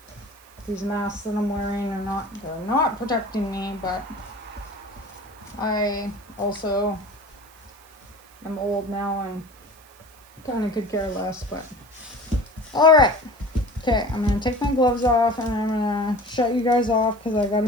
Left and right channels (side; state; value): right; noise; hiss, 26 dB below the sound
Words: these masks that I'm wearing they're not protecting me, but I also am old now and kind of could care less, but all right. Okay, I'm gonna take my gloves off and I'm gonna shut you guys off because I gotta